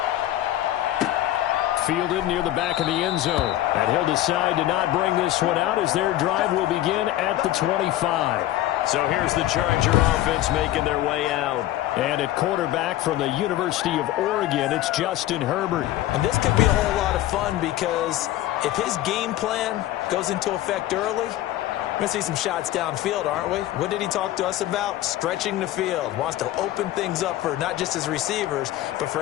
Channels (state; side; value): quieter; right; 14.3 dB